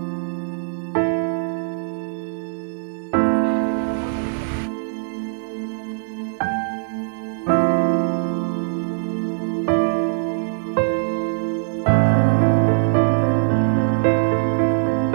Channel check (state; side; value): silent; left; digital silence